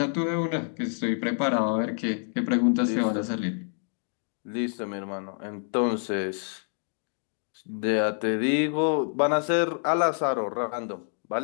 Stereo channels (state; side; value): silent; right; 59 dB below the other